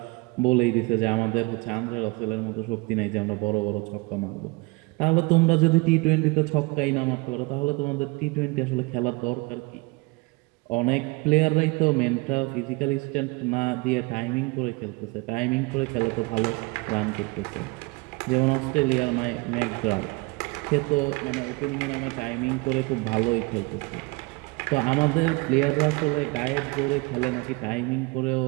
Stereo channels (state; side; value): quieter; left; 26.1 dB